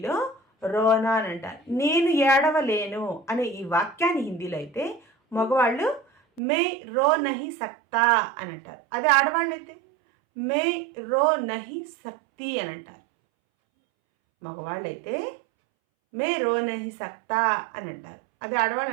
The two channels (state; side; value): drops out; left; at 6.4 s